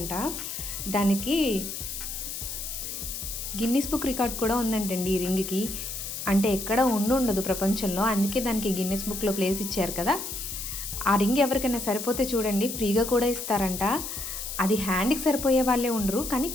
దానికి గిన్నిస్ బుక్ రికార్డ్ కూడా ఉందంటండి ఈ రింగ్కి. అంటే ఎక్కడ ఉండదు ప్రపంచంలో, అందుకే దానికి గిన్నిస్ బుక్లో ప్లేస్ ఇచ్చారు కదా. ఆ రింగ్ ఎవరికైనా సరిపోతే చూడండి ఫ్రీగా కూడా ఇస్తారంట. అది హ్యాండ్కి సరిపోయే వాళ్ళే ఉండరు, కానీ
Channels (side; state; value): left; noise; hiss, 6 dB below the sound